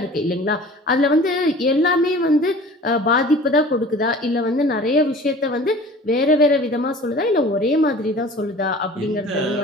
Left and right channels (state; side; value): normal; both; correlation 0.44